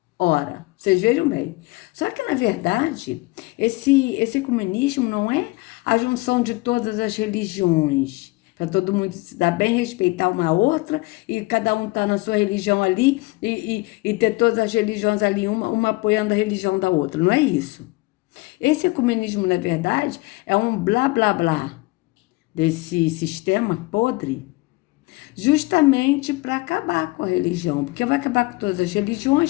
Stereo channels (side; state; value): right; quieter; 22.9 dB